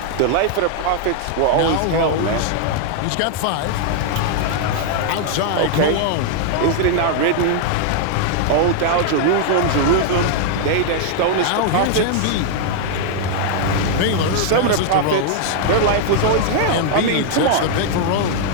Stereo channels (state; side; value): different; both; correlation 0.00